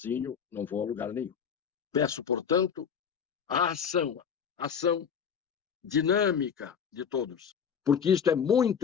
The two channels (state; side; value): quieter; right; 7.3 dB